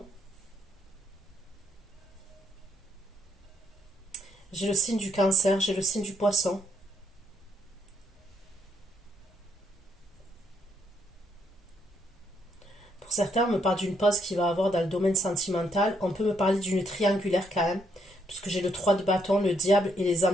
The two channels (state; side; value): normal; both; correlation 0.73